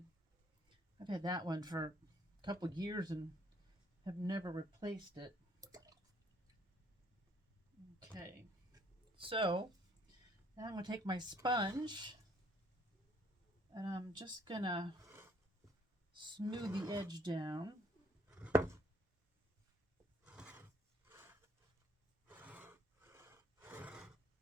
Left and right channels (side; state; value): both; normal; correlation 0.64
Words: that one for a couple years and have never replaced it. Okay, so now I'm going to take my sponge and I'm just going to smooth the edge down.